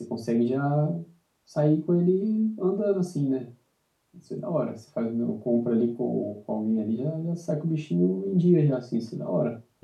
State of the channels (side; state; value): both; identical; correlation 1.00